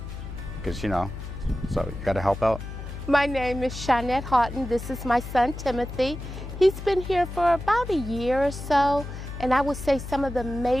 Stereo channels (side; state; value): left; noise; hum, 9 dB below the sound